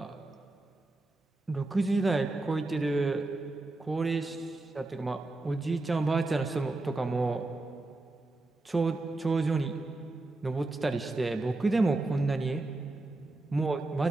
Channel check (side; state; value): left; quieter; 3.0 dB